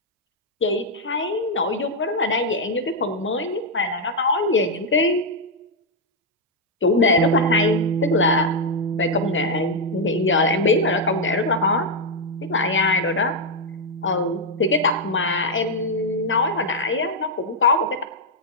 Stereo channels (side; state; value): both; normal; correlation -0.01